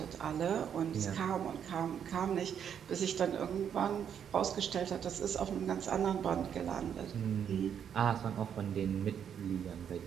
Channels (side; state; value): left; quieter; 8.4 dB